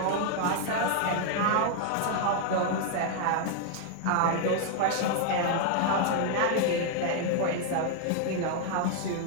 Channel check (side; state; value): both; different; correlation 0.00